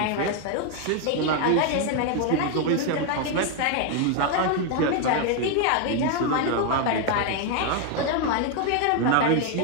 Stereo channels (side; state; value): both; different; correlation 0.01